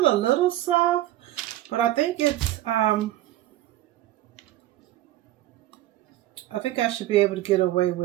a little soft, but I think it's I think I should be able to get away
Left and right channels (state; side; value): quieter; left; 14.9 dB